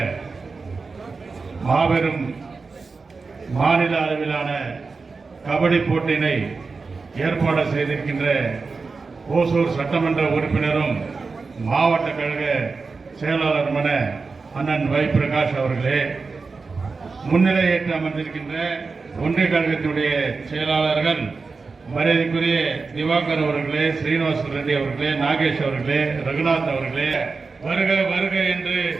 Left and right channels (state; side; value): quieter; left; 4.4 dB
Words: மாபெரும் மாநில அளவிலான கபடி போட்டியினை ஏற்பாடு செய்திருக்கின்ற ஓசூர் சட்டமன்ற உறுப்பினரும் மாவட்ட கழக செயலாளருமான அண்ணன் வை பிரகாஷ் அவர்களே, முன்னிலையேற்று அமர்ந்திருக்கின்ற ஒன்றிய கழகத்தினுடைய செயலாளர்கள் மரியாதைக்குரிய திவாகர் அவர்களே, ஸ்ரீனிவாச ரெட்டி அவர்களே, நாகேஷ் அவர்களே, ரகுநாத் அவர்களே, வருக வருக என்று